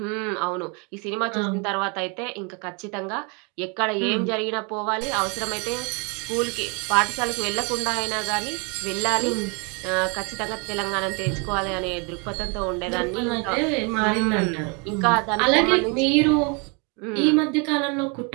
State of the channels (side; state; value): left; quieter; 33.0 dB